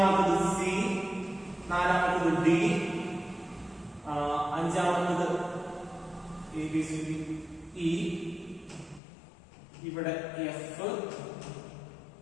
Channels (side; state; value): right; drops out; at 9.0 s